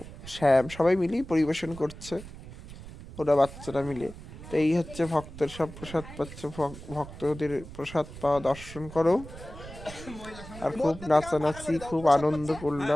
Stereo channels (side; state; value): right; noise; rumble, 14 dB below the sound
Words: শ্যাম সবাই মিলেই পরিবেশন করছে, ওরা বাচ্চারা মিলে। তো এই হচ্ছে ভক্তের সব প্রসাদ পাচ্ছে, ভক্তদের প্রসাদ পাওয়া দর্শন করো। আর খুব নাচানাচি, খুব আনন্দ